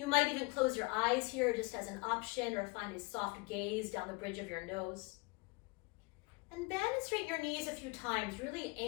might even close your eyes here just as an option, or find a soft gaze down the bridge of your nose. And bend and straighten your knees a few times, really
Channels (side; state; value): right; quieter; 27.5 dB